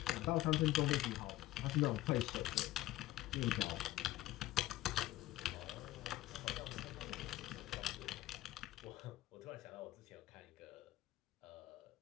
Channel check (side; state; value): right; quieter; 16.1 dB